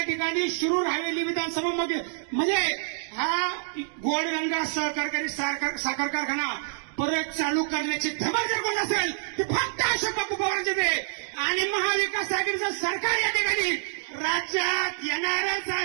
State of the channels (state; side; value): silent; left; digital silence